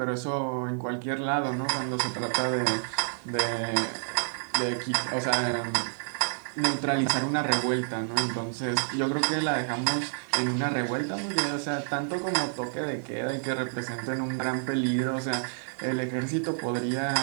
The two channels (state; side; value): silent; left; digital silence